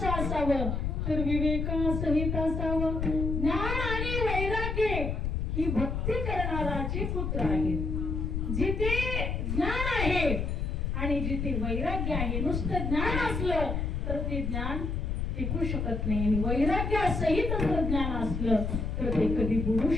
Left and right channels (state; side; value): noise; left; rumble, 1 dB below the sound